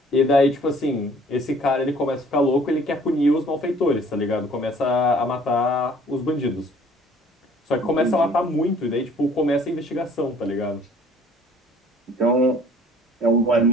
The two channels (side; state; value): both; normal; correlation 0.54